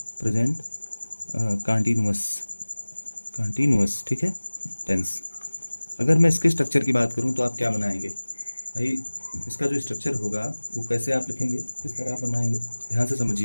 प्रेजेंट कंटिन्यूअस, ठीक है, टेंस। अगर मैं इसके स्ट्रक्चर की बात करूँ तो आप क्या बनाएंगे भाई, इसका जो स्ट्रक्चर होगा वो कैसे आप लिखेंगे, किस तरह आप बनाएंगे, ध्यान से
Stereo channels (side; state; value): both; inverted; correlation -1.00